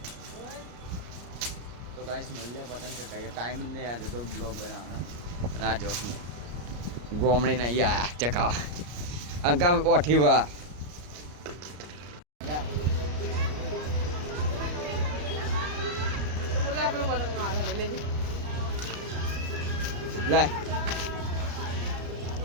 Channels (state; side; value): late; left; 34 ms